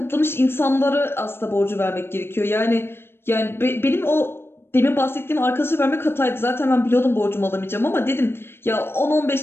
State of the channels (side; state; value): right; late; 0.11 ms